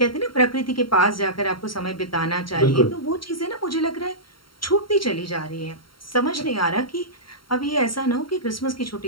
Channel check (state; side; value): late; right; 0.73 ms